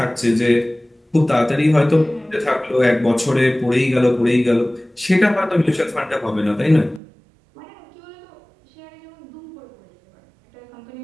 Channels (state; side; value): drops out; left; at 7.0 s